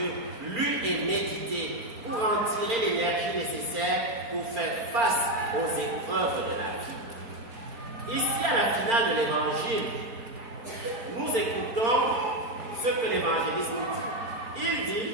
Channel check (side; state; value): left; late; 4.4 ms